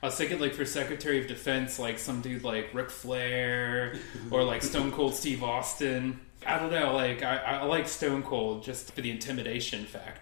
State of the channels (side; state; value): right; silent; digital silence